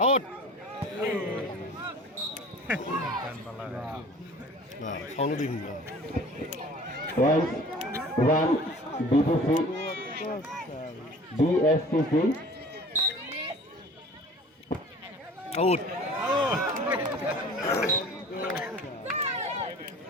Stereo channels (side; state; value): both; normal; correlation 0.45